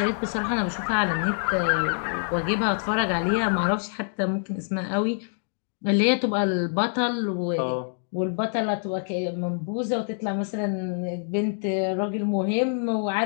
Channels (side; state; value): right; silent; digital silence